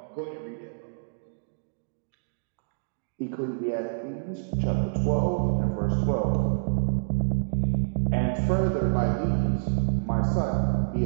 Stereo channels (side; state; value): left; silent; digital silence